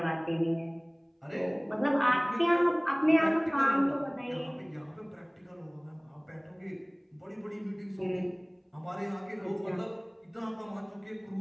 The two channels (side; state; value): both; identical; correlation 1.00